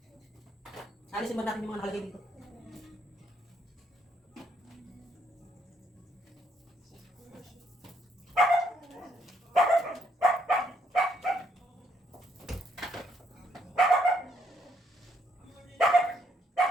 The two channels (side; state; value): both; normal; correlation 0.71